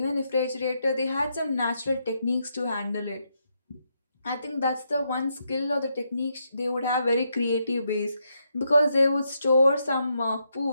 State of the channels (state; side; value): inverted; both; correlation -0.80